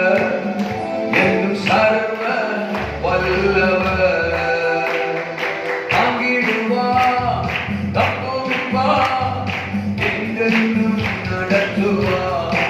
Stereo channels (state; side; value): identical; both; correlation 1.00